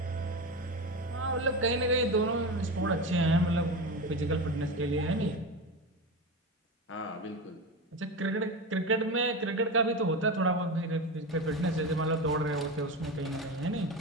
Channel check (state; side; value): normal; both; correlation 0.22